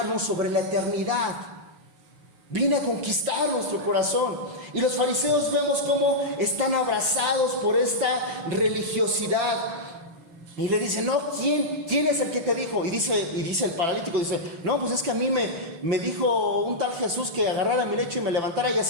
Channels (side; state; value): left; late; 5.9 ms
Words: sobre la eternidad. Viene a conquistar nuestro corazón. Y los fariseos vemos cómo están abrazados por esta religiosidad. Y le dicen, no, ¿quién es el que te dijo? Y dice el paralítico, dice, no, pues es que a mí me dijo un tal Jesús que agarrara mi lecho y me levantara, y